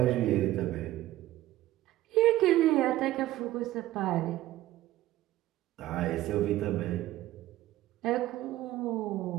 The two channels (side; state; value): left; quieter; 15.4 dB